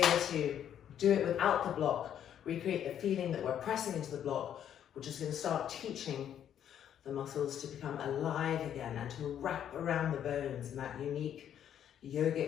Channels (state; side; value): quieter; right; 9.8 dB